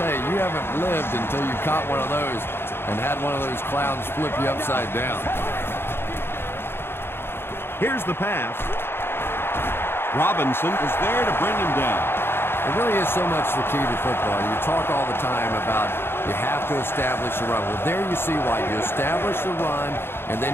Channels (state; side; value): late; right; 0.11 ms